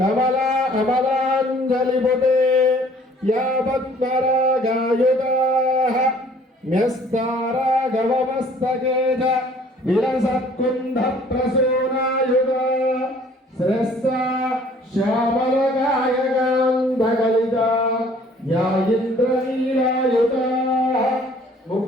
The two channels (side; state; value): both; normal; correlation 0.56